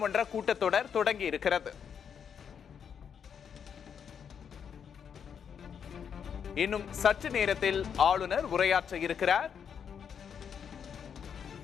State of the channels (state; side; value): quieter; right; 7.5 dB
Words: கூட்டத்தொடர் தொடங்கி இருக்கிறது. இன்னும் சற்று நேரத்தில் ஆளுநர் உரையாற்ற இருக்கிறார்.